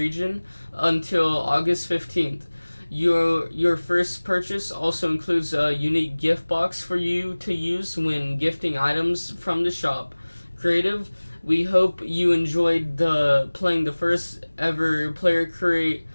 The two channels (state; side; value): inverted; both; correlation -1.00